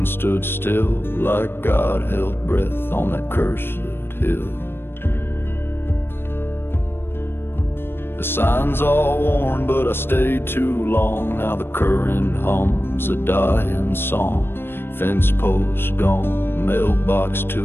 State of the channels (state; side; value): late; right; 0.10 ms